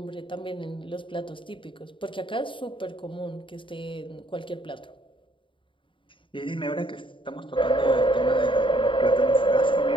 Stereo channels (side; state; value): right; late; 0.24 ms